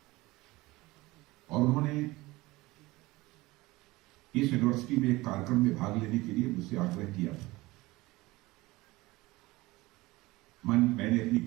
और उन्होंने इस यूनिवर्सिटी में एक कार्यक्रम में भाग लेने के लिए मुझसे आग्रह किया था। मैंने अपनी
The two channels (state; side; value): quieter; left; 20.4 dB